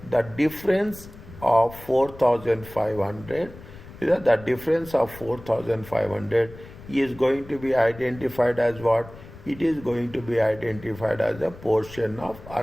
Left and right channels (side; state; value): left; noise; rumble, 18 dB below the sound